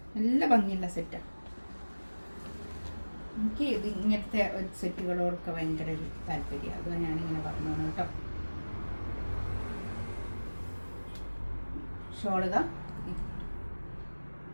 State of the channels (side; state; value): both; inverted; correlation -1.00